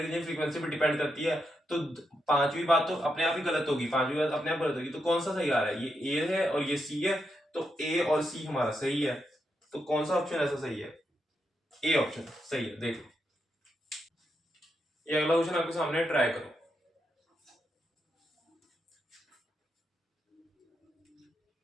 एनर्जी फ्रीक्वेंसी पे डिपेंड करती है, तो पांचवी बात तो अपने आप ही गलत होगी, पांचवी बात अपने आप गलत होगी। तो कौन सा सही आ रहा है, ये ए है और ये सी है, तो ए और सी हमारा सही है। तो कौन सा ऑप्शन ऐसा सही है, ए ऑप्शन सही है। देखो ये अगला क्वेश्चन आपके सामने, ट्राई करो।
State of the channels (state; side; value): normal; both; correlation 0.83